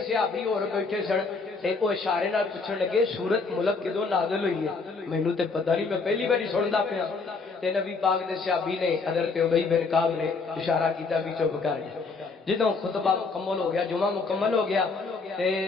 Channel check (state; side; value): quieter; right; 4.3 dB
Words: صحابی اور بیٹھے سن تے او اشارے نال پوچھن لگے سورت ملک کدوں نازل ہوئی ہے؟ مینوں تے پتہ نہیں، میں پہلی باری سندا پیا۔ تے نبی پاک دے صحابی نے حضرت ابی بن کعب نے اشارہ کیتا بھی چپ کر جا۔ جدوں خطبہ مکمل ہو گیا، جمعہ مکمل ہو گیا، تے